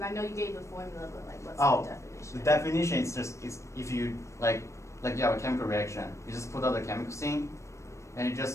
I know you gave the formula, but like, what's the definition? The definition is just if you like you have a chemical reaction, you just put out the chemicals in, and it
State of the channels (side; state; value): right; late; 0.14 ms